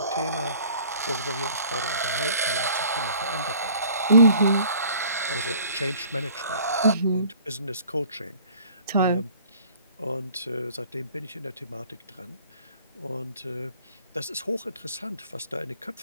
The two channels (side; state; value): both; inverted; correlation -0.52